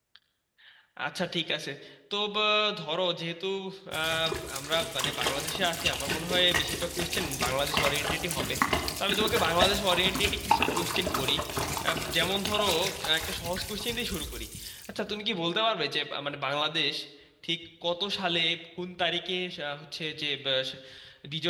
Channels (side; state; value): both; identical; correlation 1.00